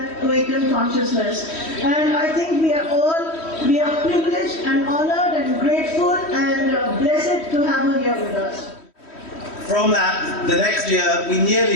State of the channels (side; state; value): right; late; 3.1 ms